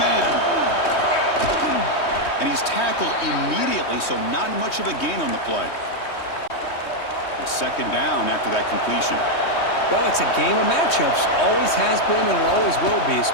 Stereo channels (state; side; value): late; right; 3.2 ms